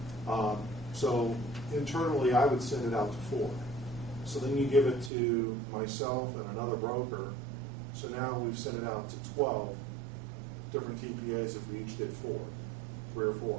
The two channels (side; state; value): left; drops out; at 5.1 s